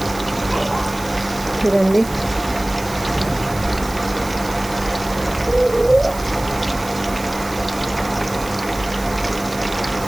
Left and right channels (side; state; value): right; noise; hiss, 15 dB below the sound